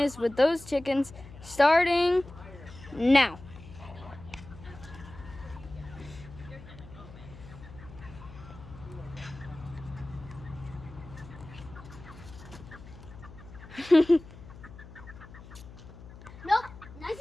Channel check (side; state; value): left; noise; hum, 17 dB below the sound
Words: with those chickens starting now. nope,